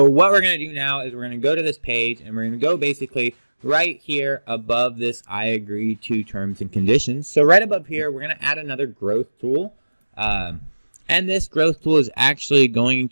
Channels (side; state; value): both; inverted; correlation -1.00